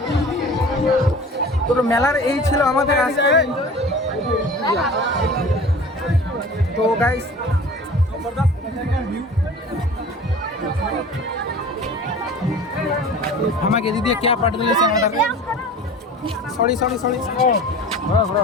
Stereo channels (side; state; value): both; normal; correlation 0.40